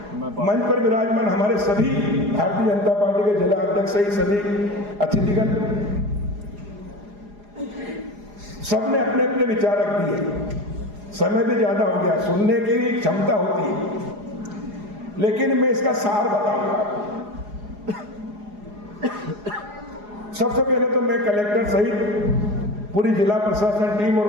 मंच पर विराजमान हमारे सभी भारतीय जनता पार्टी के जिला अध्यक्ष सहित सभी अतिथिगण, सबने अपने अपने विचार रख दिए। समय भी ज्यादा हो गया, सुनने की भी क्षमता होती है, लेकिन मैं इसका सार बताऊंगा आपको। सबसे पहले तो मैं कलेक्टर सहित पूरी जिला प्रशासन टीम और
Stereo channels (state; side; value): late; left; 4.8 ms